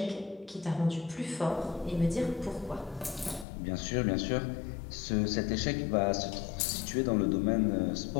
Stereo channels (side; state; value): right; drops out; at 3.5 s